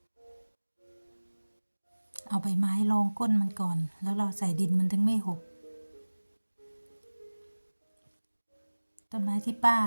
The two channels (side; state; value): both; inverted; correlation -1.00